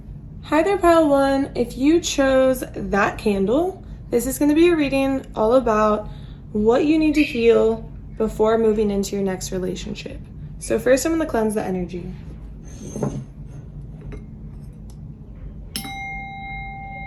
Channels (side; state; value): both; identical; correlation 1.00